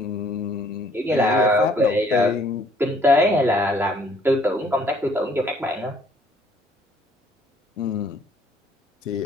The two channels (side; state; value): both; normal; correlation 0.61